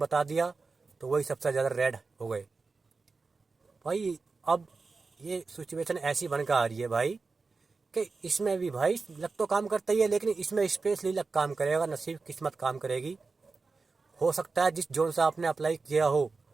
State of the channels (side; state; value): left; quieter; 4.2 dB